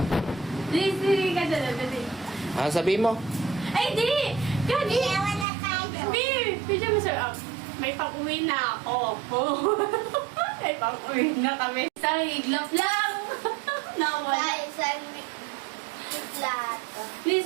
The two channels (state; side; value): drops out; left; at 5.5 s